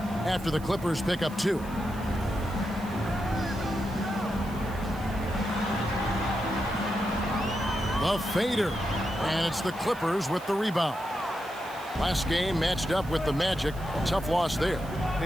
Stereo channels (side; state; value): right; noise; hiss, 20 dB below the sound